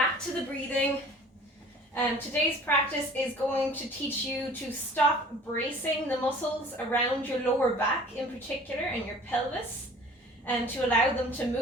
to the breathing. Today's practice is going to teach you to stop bracing the muscles around your lower back in particular and your pelvis, and to allow them to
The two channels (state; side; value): normal; both; correlation 0.48